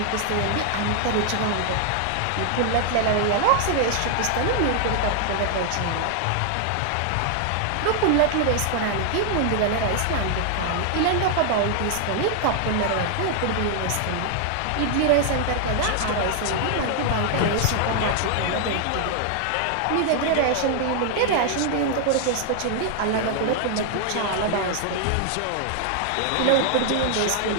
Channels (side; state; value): both; different; correlation 0.00